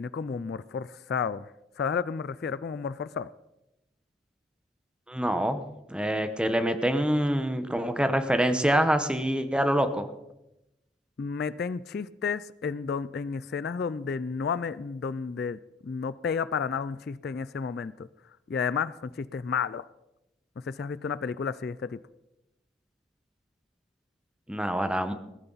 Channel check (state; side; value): normal; both; correlation 0.67